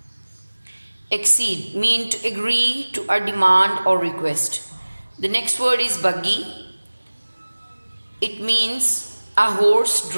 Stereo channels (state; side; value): inverted; both; correlation -1.00